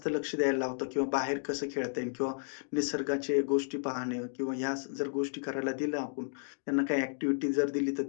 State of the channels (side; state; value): right; silent; digital silence